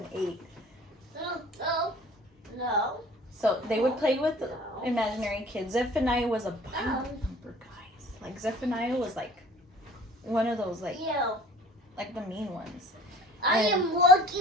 8. No. So they would play with imaginary kids. Zephaniah was a Bible thumper, guys. Like Zephaniah was like one of those like the mean ones. I am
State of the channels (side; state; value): both; normal; correlation 0.48